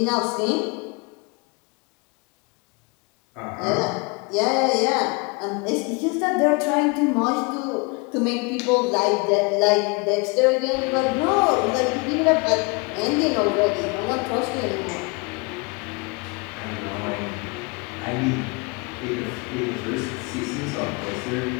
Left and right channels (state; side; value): quieter; right; 29.5 dB